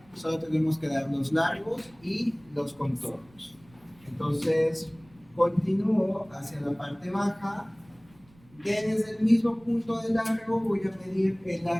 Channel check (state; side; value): noise; right; rumble, 28 dB below the sound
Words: Solo tenemos que dar los largos y los contornos. Entonces, continúo hacia la parte baja. Desde el mismo punto de largo voy a medir el